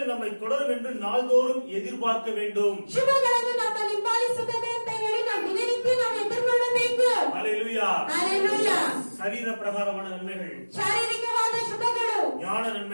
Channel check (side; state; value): both; inverted; correlation -1.00